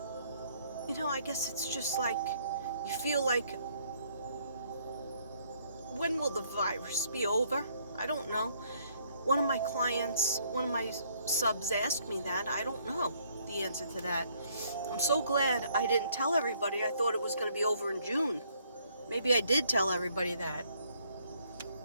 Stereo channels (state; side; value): inverted; both; correlation -0.66